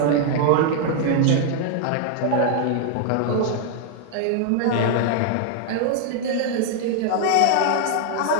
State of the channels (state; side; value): different; both; correlation -0.01